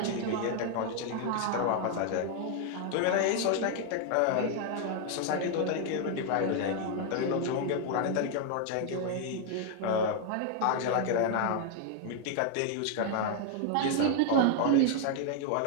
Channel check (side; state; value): both; different; correlation 0.00